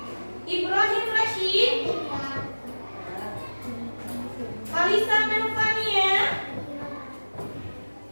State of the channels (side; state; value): both; inverted; correlation -1.00